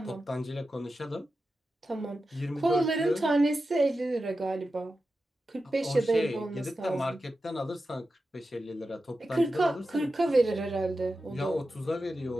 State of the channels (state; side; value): normal; both; correlation 0.91